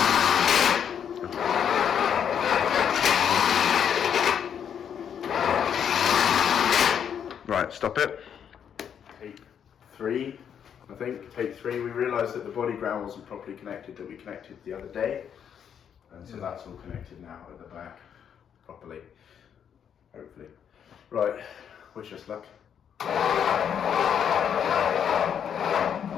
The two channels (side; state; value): right; quieter; 8.3 dB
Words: Right, stop it. Take 3, I think. Take 3. We realised that the body ground wasn't properly connected, that we connected the other day. And so that's all connected now at the back properly, hopefully. Right, wish us luck.